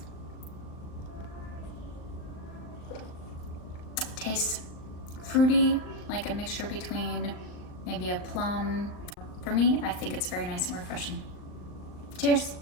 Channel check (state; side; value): late; right; 39 ms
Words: Tastes fruity, like a mixture between maybe a plum. For me, I think it's very nice and refreshing. Cheers.